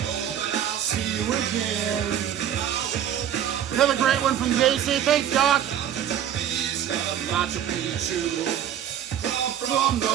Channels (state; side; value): quieter; left; 10.0 dB